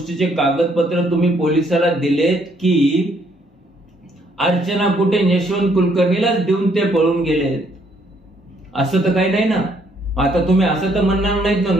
कागदपत्र तुम्ही पोलिसाला दिलेत की अर्चना कुटे यशवंत कुलकर्णीलाच देऊन ते पळून गेलेत? असं तर काही नाही ना. आता तुम्ही असं तर म्हणणार नाहीत ना,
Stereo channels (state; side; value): normal; both; correlation 0.68